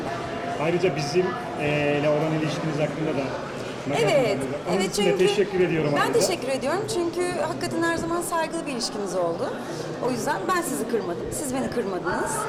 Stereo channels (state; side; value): identical; both; correlation 1.00